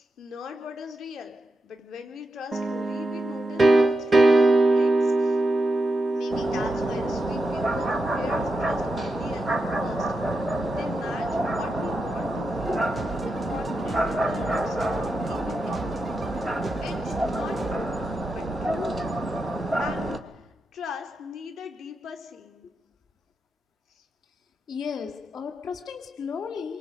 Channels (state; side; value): normal; both; correlation 0.87